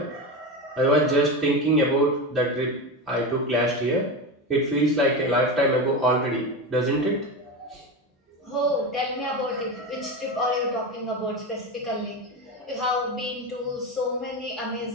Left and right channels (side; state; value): both; normal; correlation 0.21